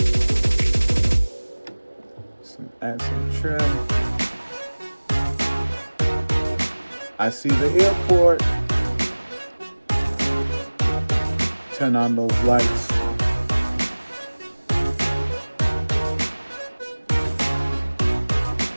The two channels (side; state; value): both; inverted; correlation -1.00